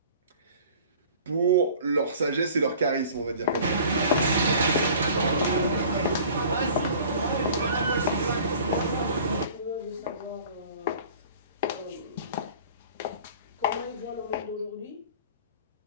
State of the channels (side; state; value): both; inverted; correlation -0.46